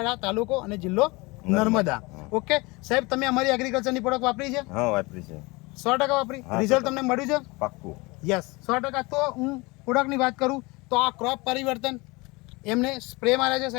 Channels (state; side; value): quieter; right; 24.7 dB